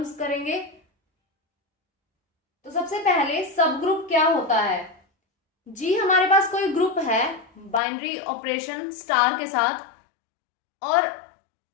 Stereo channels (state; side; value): drops out; right; at 7.8 s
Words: करेंगे। तो सबसे पहले सब ग्रुप क्या होता है। जी हमारे पास कोई ग्रुप है बाइनरी ऑपरेशन स्टार के साथ, और